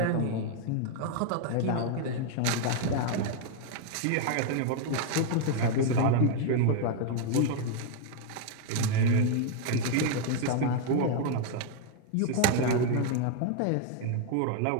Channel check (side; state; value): both; different; correlation 0.00